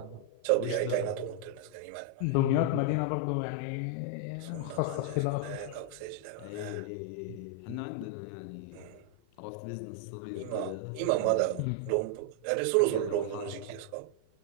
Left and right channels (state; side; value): different; both; correlation 0.00